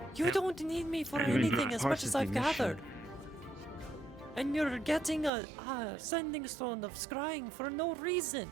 You don't need me for I mean, anything you're as part much of as the I've mission. gathered. And you're getting a sending stone of scrying for no reason.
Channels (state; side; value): drops out; left; at 5.3 s